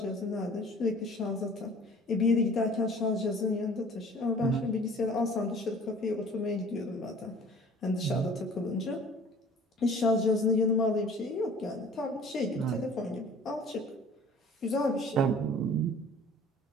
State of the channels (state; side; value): normal; both; correlation 0.48